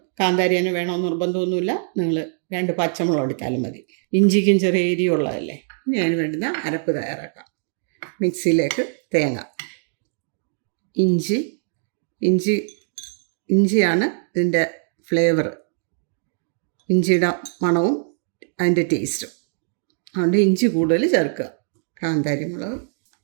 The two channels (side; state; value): left; silent; digital silence